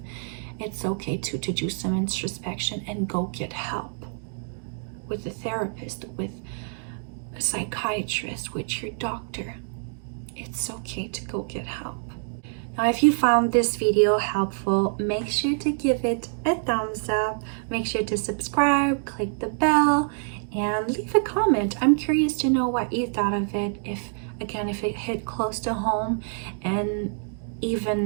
It's okay to do some introspection and go get help with a therapist, with a psychiatrist, with your doctor. It's okay to go get help. Now, if you found this video helpful, make sure to give it a thumbs up. Make sure to subscribe, click the bell, and leave a comment. I'm curious to know what you thought of it, if it hit close to home, and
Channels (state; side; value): silent; left; 61 dB below the other